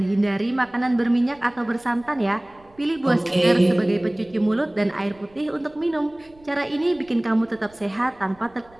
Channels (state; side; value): noise; right; rumble, 29 dB below the sound